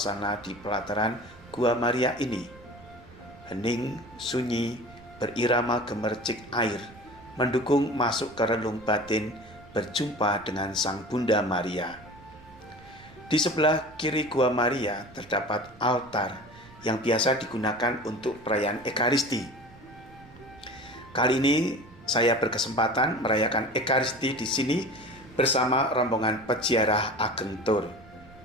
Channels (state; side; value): noise; right; rumble, 22 dB below the sound